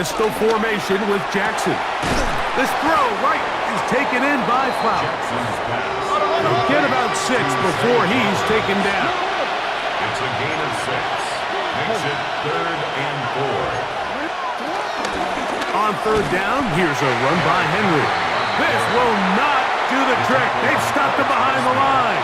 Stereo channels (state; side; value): identical; both; correlation 1.00